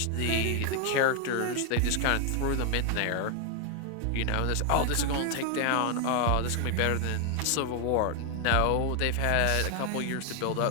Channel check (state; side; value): different; both; correlation 0.00